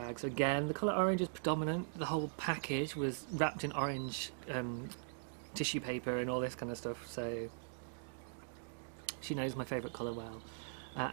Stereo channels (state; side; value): silent; left; digital silence